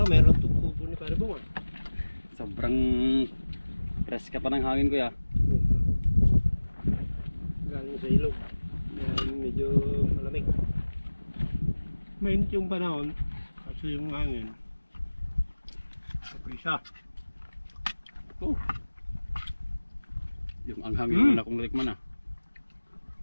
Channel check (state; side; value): inverted; both; correlation -1.00